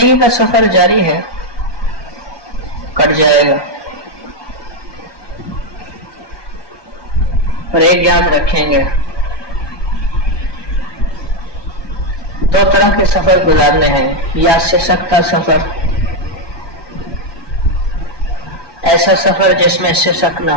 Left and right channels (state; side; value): late; right; 1.2 ms